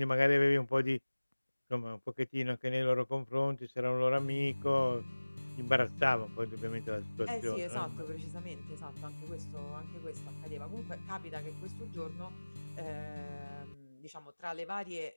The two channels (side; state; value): both; inverted; correlation -1.00